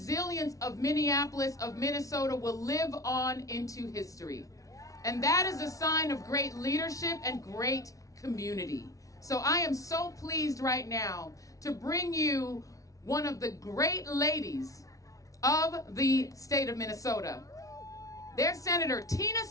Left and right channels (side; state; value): right; late; 0.17 ms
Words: of Minneapolis, of Minnesota, will live on into history. And that is a sign of great leadership and great community. So I am so pleased right now to bring you one of the great ladies of the state of Minnesota. Their Senator Tina